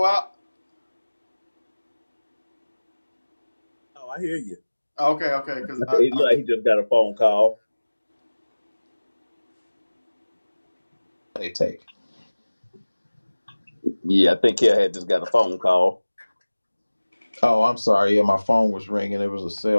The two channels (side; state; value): both; inverted; correlation -1.00